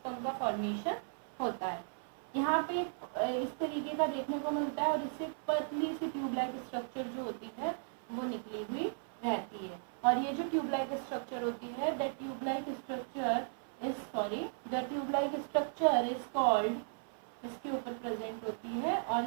का formation होता है. यहाँ पे इस तरीके का देखने को मिलता है, और इससे पतली सी ट्यूब लाइक स्ट्रक्चर जो होती है वो निकली हुई रहती है. और ये जो ट्यूब लाइक स्ट्रक्चर होती है, the tube like structure is called, इसके ऊपर प्रेजेंट होती है, और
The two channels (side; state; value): left; silent; 54 dB below the other